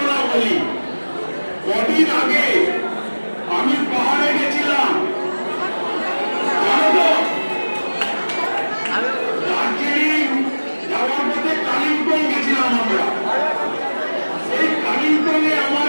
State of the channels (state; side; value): inverted; both; correlation -1.00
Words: বলি। কদিন আগে আমি পাহাড়ে গেছিলাম, দার্জিলিং যাওয়ার পথে কালিম্পং গেছিলাম আমরা। সেই কালিম্পংয়ে আমার